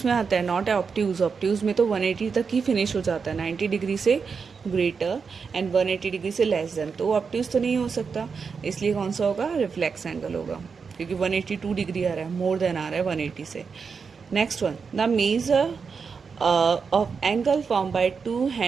में आता है? Not obtuse. ऑप्ट्यूज में तो 180 तक ही फिनिश हो जाता है, 90 डिग्री से ग्रेटर एंड 180 डिग्री से लेस देन. तो ऑप्ट्यूज तो नहीं हो सकता, इसलिए कौन सा होगा? रिफ्लेक्स एंगल होगा, क्योंकि 182 डिग्री आ रहा है, मोर देन आ रहा है 180 से. Next one, the measure of angle formed by two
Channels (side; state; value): left; quieter; 5.6 dB